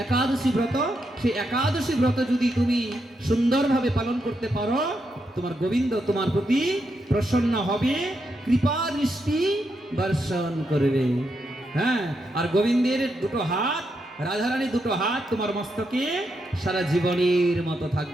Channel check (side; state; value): both; normal; correlation 0.82